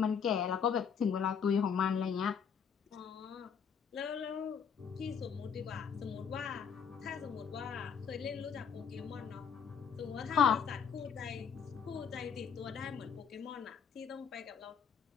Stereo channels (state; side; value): quieter; right; 7.1 dB